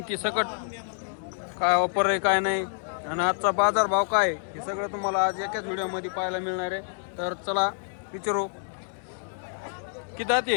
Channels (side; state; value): right; silent; digital silence